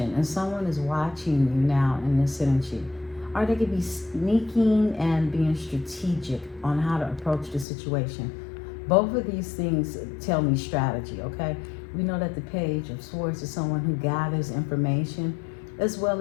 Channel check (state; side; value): drops out; right; at 7.7 s